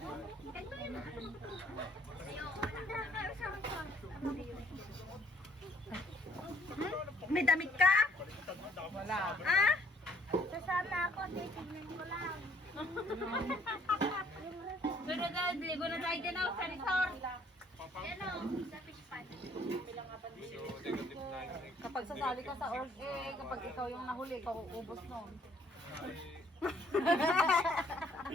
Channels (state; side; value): normal; both; correlation 0.63